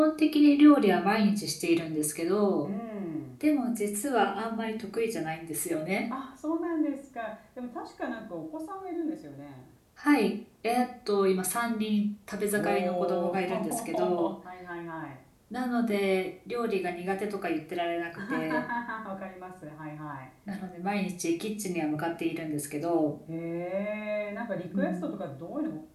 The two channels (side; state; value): both; identical; correlation 1.00